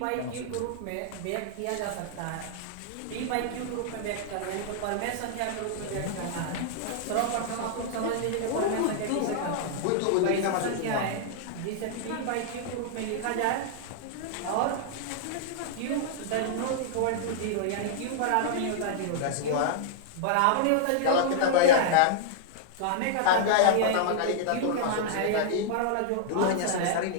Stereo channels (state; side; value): different; both; correlation -0.01